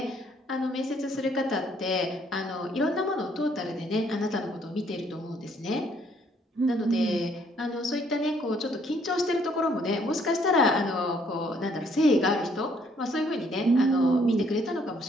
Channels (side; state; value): both; normal; correlation 0.66